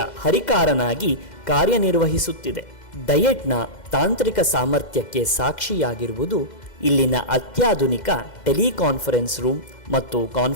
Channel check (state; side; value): late; right; 2.1 ms